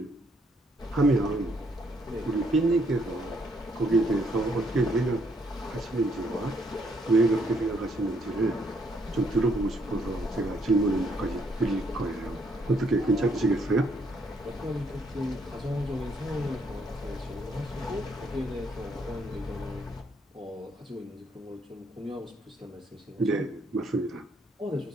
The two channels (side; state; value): both; normal; correlation 0.70